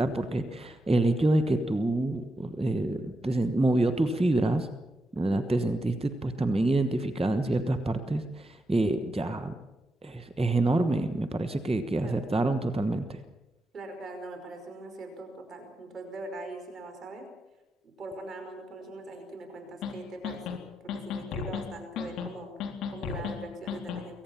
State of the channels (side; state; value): both; normal; correlation 0.86